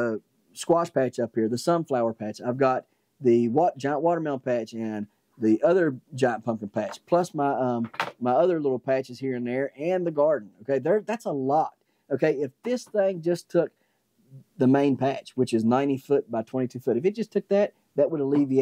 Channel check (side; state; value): both; identical; correlation 1.00